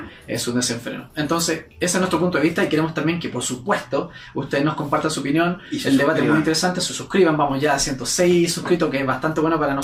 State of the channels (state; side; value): identical; both; correlation 1.00